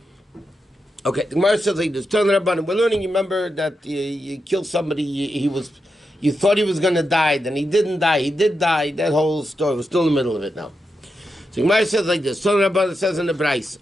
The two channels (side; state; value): both; normal; correlation 0.87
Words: Okay, the Gemara says like this. We're learning, you remember that you killed somebody, you thought he was going to die, then he didn't die, he did die. That whole story, we're still in the middle of it now. So the Gemara says like this. It says in the Bryce,